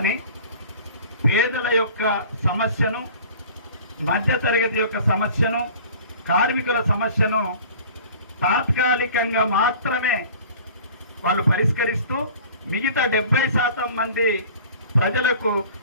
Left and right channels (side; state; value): both; inverted; correlation -0.45